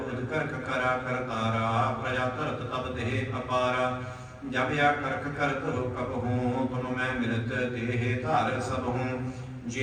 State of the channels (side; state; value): both; identical; correlation 1.00